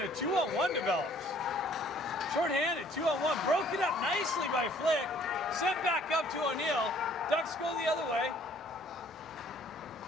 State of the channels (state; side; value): normal; both; correlation 0.58